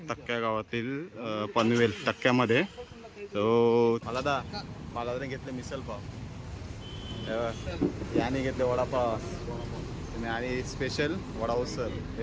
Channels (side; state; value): both; identical; correlation 1.00